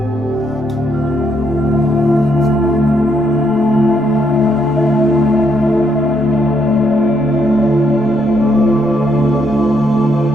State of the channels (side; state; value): right; noise; rumble, 23 dB below the sound